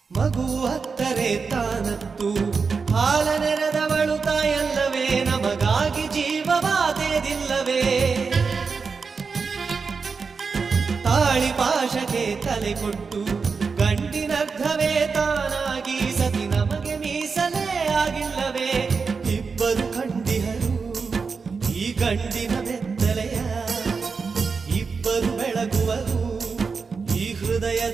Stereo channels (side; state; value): left; quieter; 5.1 dB